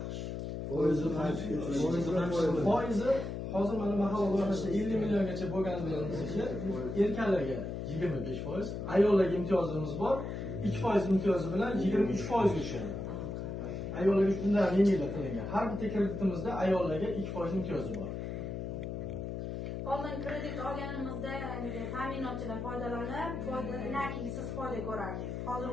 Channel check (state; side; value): noise; left; hum, 5 dB below the sound